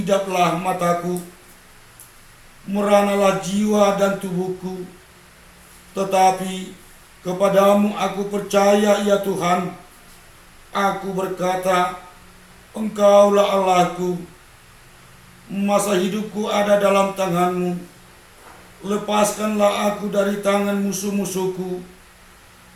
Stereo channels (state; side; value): identical; both; correlation 1.00